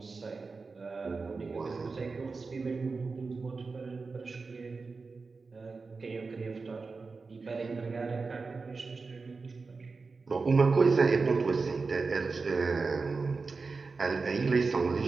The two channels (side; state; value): left; quieter; 4.3 dB